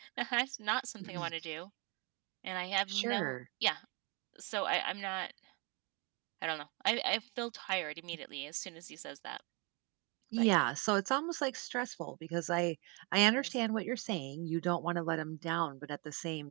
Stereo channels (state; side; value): quieter; left; 31.2 dB